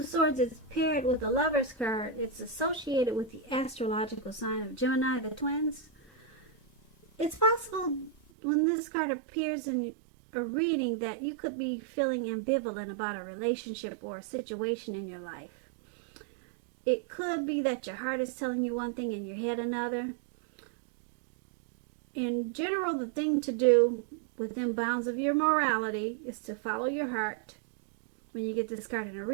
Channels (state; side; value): drops out; left; at 8.2 s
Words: Swords is paired with the Lover's card. It's associated with the astrological sign of Gemini, the twins. It's possible when this card appears in a reading that you could be feeling ambivalent about a relationship or a situation in your life. It could be that your heart is telling you one thing and your head another. In general, the thing to do within bounds of your morality is to follow your heart. When you get this card in a